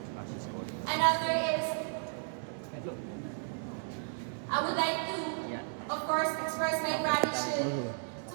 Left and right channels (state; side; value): silent; left; digital silence